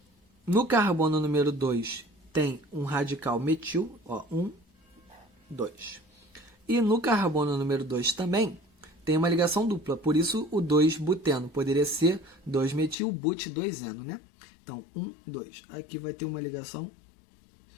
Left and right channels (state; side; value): drops out; right; at 13.0 s